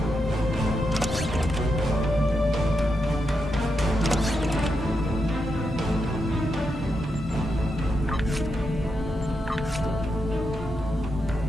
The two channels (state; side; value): normal; both; correlation 0.85